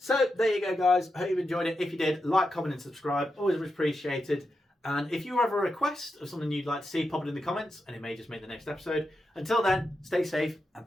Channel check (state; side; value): normal; both; correlation 0.87